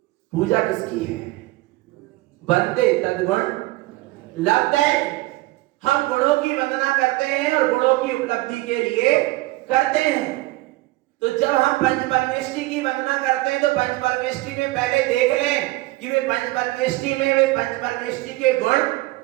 पूजा किसकी है? बंदे तद्गुण लब्धे। हम गुणों की वंदना करते हैं और गुणों की उपलब्धि के लिए करते हैं। तो जब हम पंच परमेष्टि की वंदना करते हैं तो पंच परमेष्टि में पहले देख लें कि वे पंच परमेष्टि में वे पंच परमेष्टि के गुण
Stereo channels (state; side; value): quieter; left; 19.8 dB